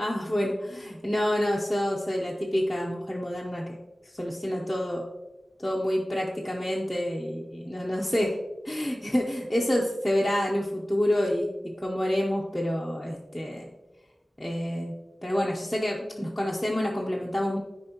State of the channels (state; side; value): normal; both; correlation 0.97